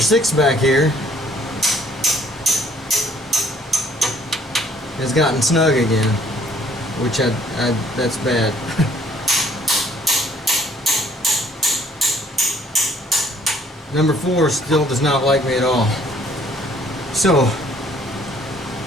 6 back here has gotten snug again, which that's bad. Number 4 still does not like me at all. So,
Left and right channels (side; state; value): both; normal; correlation 0.61